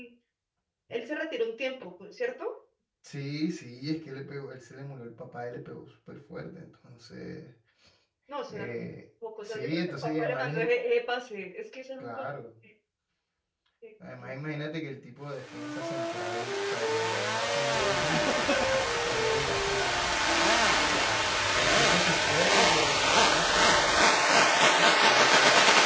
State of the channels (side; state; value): both; identical; correlation 1.00